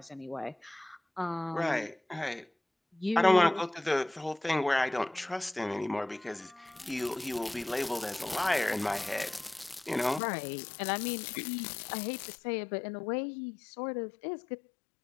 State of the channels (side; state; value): right; drops out; at 10.2 s